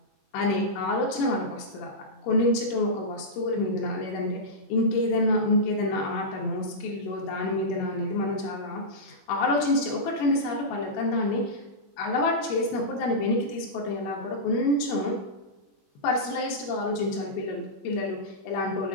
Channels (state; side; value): late; right; 21 ms